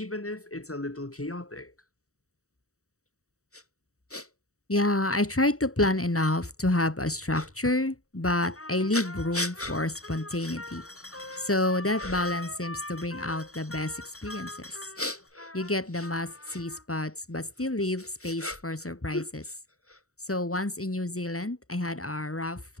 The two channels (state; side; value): late; right; 0.65 ms